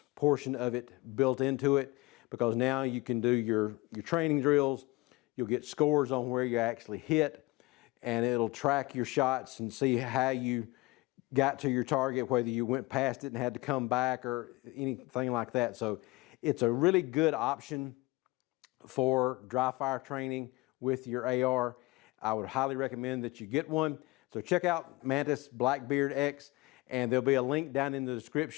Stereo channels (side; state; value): right; quieter; 22.4 dB